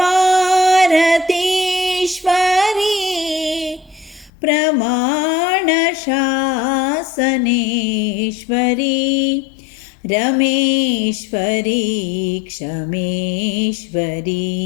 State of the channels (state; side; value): drops out; right; at 4.3 s